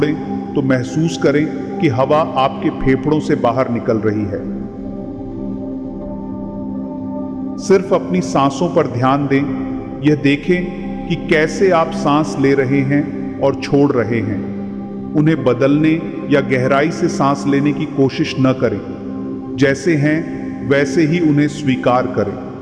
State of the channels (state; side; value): identical; both; correlation 1.00